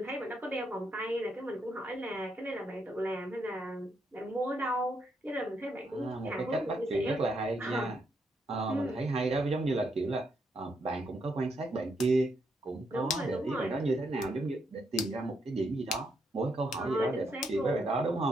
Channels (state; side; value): normal; both; correlation 0.78